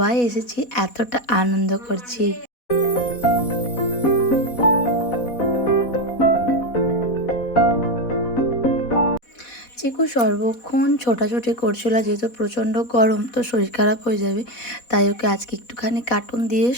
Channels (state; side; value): late; right; 4.1 ms